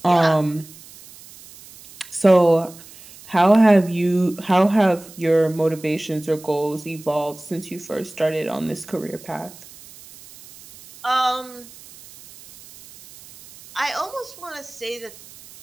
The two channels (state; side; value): noise; right; hiss, 20 dB below the sound